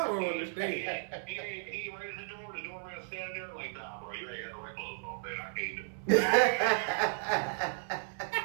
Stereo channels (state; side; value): silent; left; 55 dB below the other